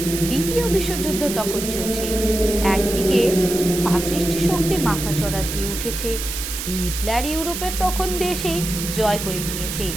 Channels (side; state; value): right; noise; hiss, 6 dB below the sound